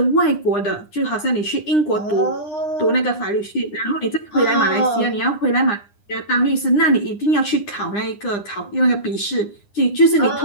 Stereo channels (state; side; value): late; right; 9.8 ms